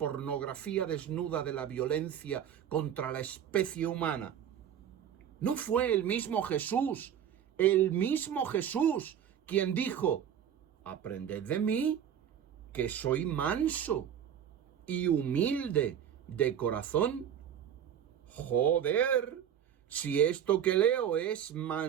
desnuda de la violencia contra la especie humana? ¿No fue el mismo Jesús, quien dijo: aprended de mí, que soy manso y humilde de corazón? Joder, si esto que leo es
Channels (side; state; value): left; quieter; 9.2 dB